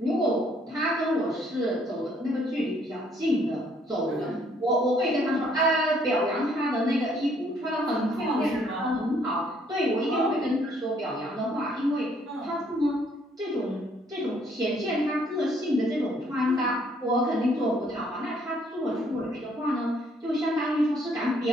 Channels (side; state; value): both; normal; correlation 0.65